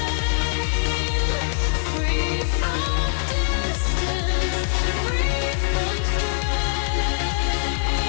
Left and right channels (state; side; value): silent; right; digital silence